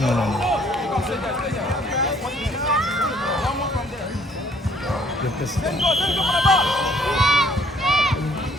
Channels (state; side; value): normal; both; correlation 0.61